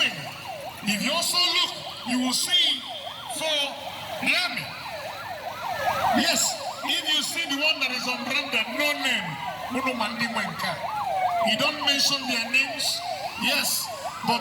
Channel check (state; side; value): identical; both; correlation 1.00